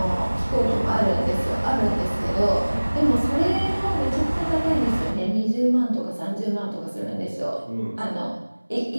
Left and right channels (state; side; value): inverted; both; correlation -1.00